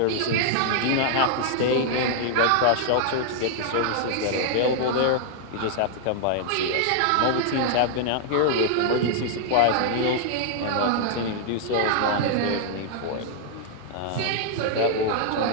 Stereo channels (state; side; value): different; both; correlation -0.01